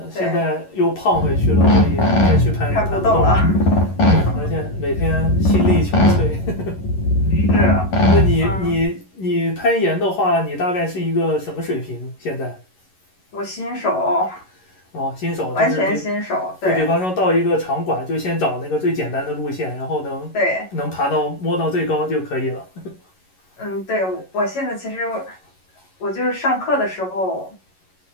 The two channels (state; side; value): late; right; 11 ms